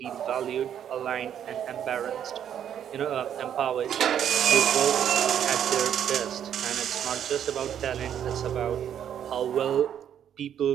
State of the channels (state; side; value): quieter; left; 9.5 dB